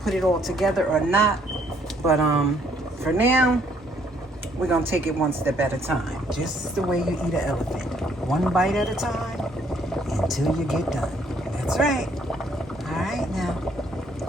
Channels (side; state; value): both; normal; correlation 0.66